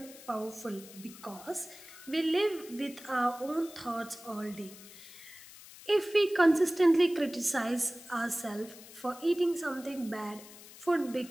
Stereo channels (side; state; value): left; noise; hiss, 18 dB below the sound